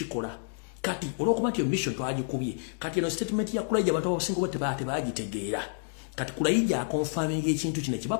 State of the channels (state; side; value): silent; right; digital silence